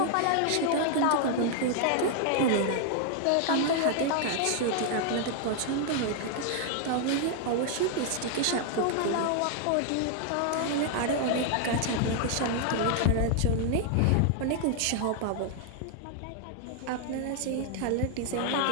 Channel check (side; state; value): both; different; correlation 0.00